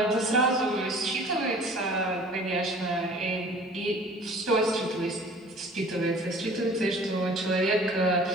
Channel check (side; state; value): both; normal; correlation 0.48